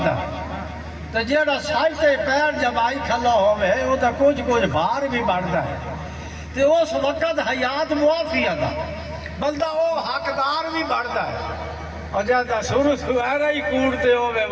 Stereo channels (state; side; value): identical; both; correlation 1.00